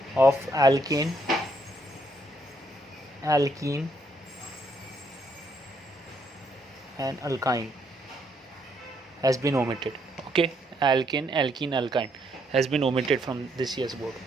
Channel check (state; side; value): normal; both; correlation 0.72